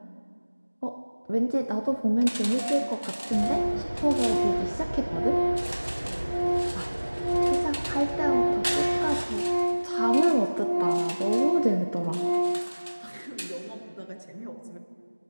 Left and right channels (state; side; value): inverted; both; correlation -1.00